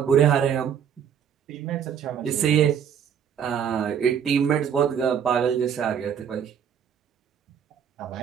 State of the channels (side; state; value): left; quieter; 8.2 dB